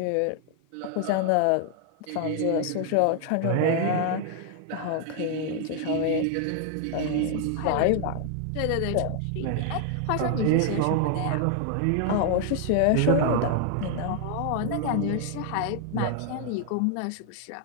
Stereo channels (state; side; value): different; both; correlation 0.00